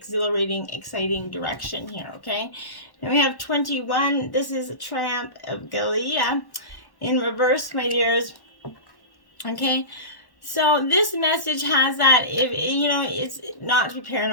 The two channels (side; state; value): right; late; 1.1 ms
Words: exciting direction here, okay? Now we have 21. This is a Triumph of Gallia in reverse, my dears. Okay? So this message has that, it's not to be